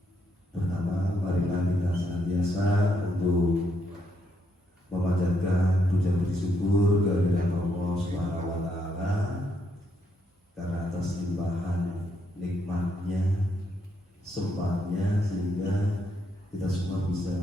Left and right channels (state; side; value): normal; both; correlation 0.77